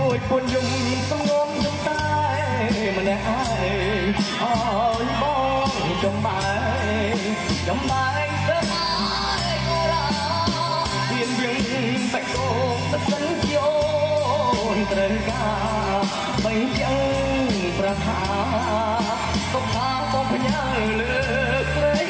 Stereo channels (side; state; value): both; identical; correlation 1.00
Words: ួចពុនយំសំងំយំតែម្នាក់ឯងអើយបងចំបែងទៅទៀនយើងបាច់កោបសិនយោនត្រូវការបីចឹងប្រាថ្នាសុខថាបងផ្ញើលើស្រី